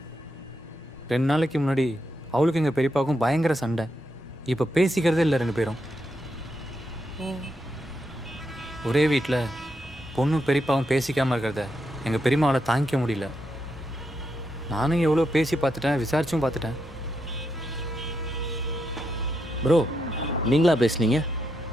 2 நாளைக்கு முன்னாடி அவளுக்கு எங்கள் பெரியப்பாவுக்கும் பயங்கர சண்டை. இப்போ பேசிக்கிறதே இல்லை 2 பேரும். ஒரே வீட்டில் பொண்ணு பெரியப்பாவும் பேசிக்காமல் இருக்கிறத எங்கள் பெரியம்மாவால் தாங்கிக்க முடியல. நானும் எவ்வளோ பேசி பார்த்துட்டேன், விசாரிச்சும் பார்த்துட்டேன். ப்ரோ நீங்களா பேசுனீங்க?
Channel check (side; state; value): both; normal; correlation 0.82